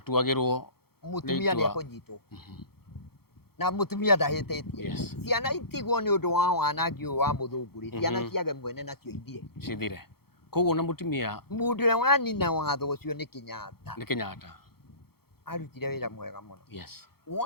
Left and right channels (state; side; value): late; right; 0.95 ms